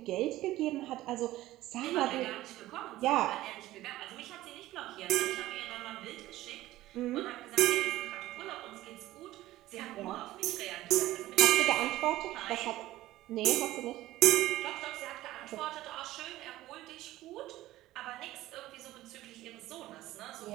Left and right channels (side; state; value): left; quieter; 16.0 dB